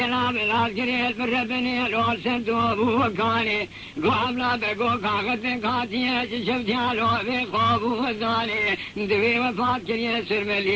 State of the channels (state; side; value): identical; both; correlation 1.00